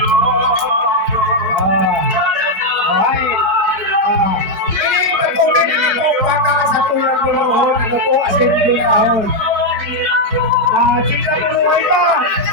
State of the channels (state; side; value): late; left; 4.1 ms